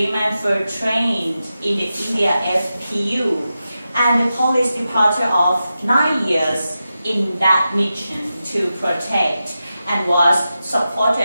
were trained in the India FPU and the police departure of 9 years in that mission to protect and was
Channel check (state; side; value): inverted; both; correlation -0.91